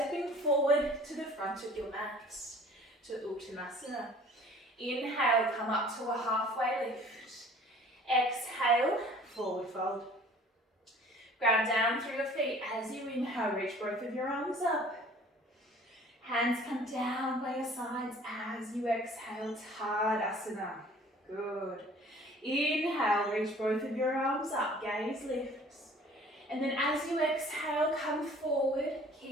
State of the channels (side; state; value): both; normal; correlation 0.50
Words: forward to the front of your mat, to Uttanasana. Inhale, come up to a halfway lift. Exhale, forward fold. Ground down through your feet. As you inhale, reach both of your arms up. Hands come down by your sides as you exhale, Tadasana. Good. Inhale, reach both of your arms up, gaze lifts. And then as you exhale, come forward,